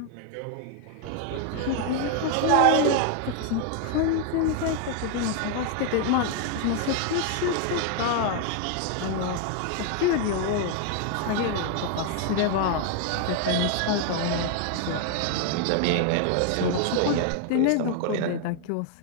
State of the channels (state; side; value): different; both; correlation 0.01